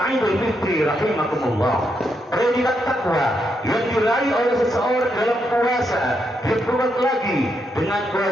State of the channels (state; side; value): normal; both; correlation 0.80